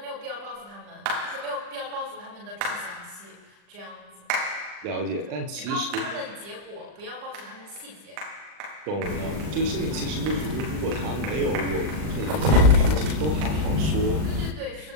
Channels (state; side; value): late; left; 39 ms